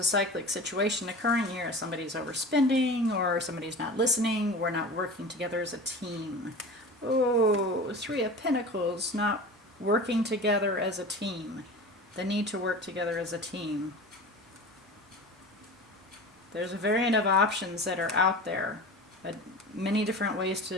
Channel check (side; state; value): both; normal; correlation 0.34